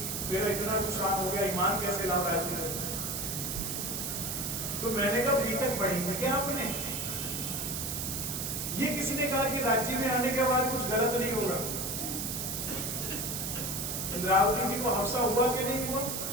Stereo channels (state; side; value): noise; right; hiss, 3 dB below the sound